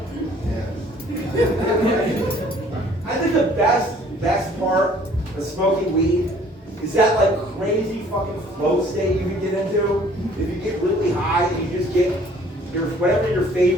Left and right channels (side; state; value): both; normal; correlation 0.56